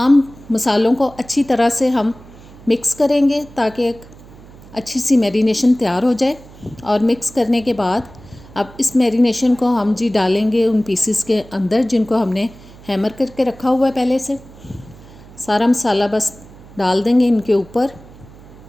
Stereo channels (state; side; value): noise; right; hum, 21 dB below the sound